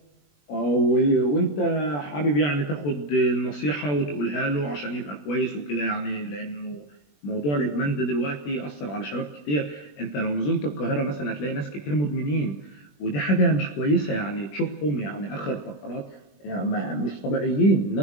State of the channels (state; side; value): late; right; 20 ms